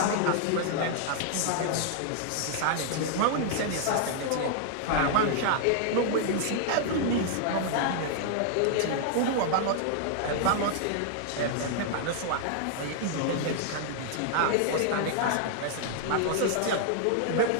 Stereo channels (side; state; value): both; different; correlation -0.01